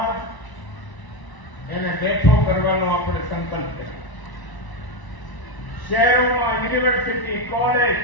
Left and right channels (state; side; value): late; right; 1.0 ms